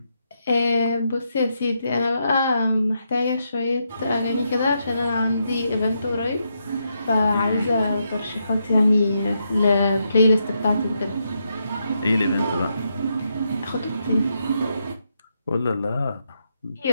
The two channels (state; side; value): inverted; both; correlation -0.81